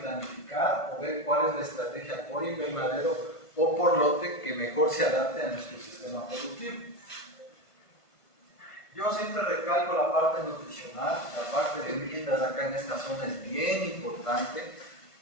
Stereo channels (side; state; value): right; late; 1.5 ms